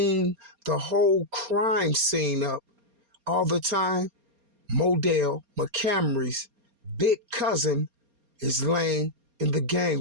the whole crime scene up all the time. Modell McCamry's big cousin is laying in the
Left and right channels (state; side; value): late; left; 4.3 ms